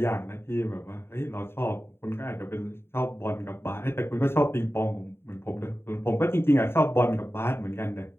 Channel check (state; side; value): late; right; 0.11 ms